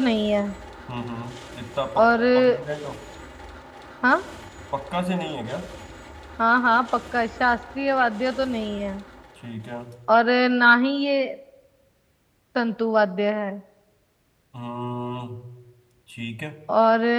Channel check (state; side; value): identical; both; correlation 1.00